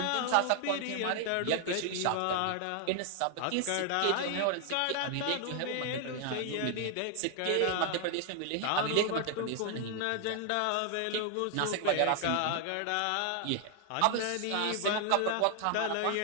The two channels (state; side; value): different; both; correlation 0.00